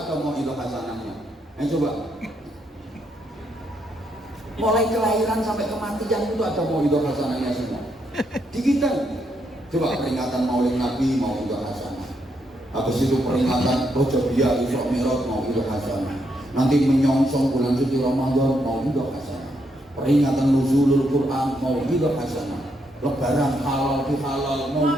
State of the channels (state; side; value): normal; both; correlation 0.77